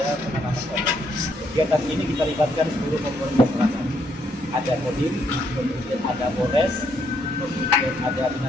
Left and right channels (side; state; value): both; normal; correlation 0.73